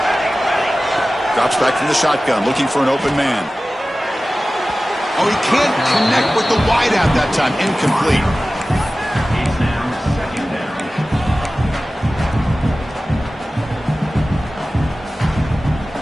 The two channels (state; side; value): normal; both; correlation 0.96